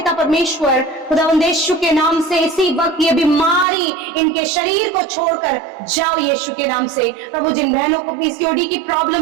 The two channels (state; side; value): drops out; left; at 3.7 s